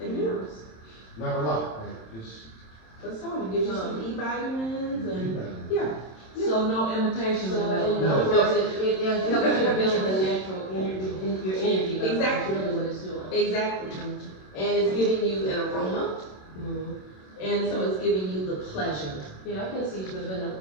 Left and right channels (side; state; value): right; late; 27 ms